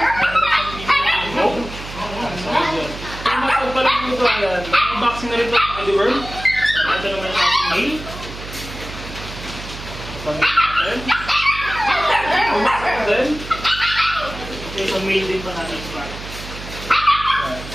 Big bone. Kung matag pa lang dito, ayan, may unboxing na rin ito sa deworm. Ito naman yung ating male. Pangin natin. Unboxing natin. Ito yung male din pa natin.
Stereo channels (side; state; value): right; noise; hum, 12 dB below the sound